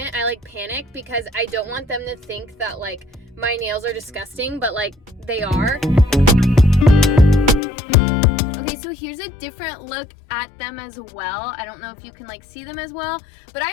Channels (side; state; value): right; drops out; at 7.6 s